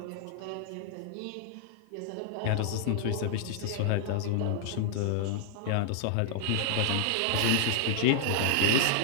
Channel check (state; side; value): different; both; correlation -0.01